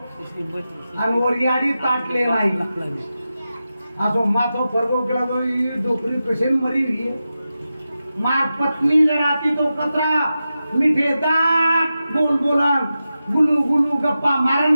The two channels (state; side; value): inverted; both; correlation -0.92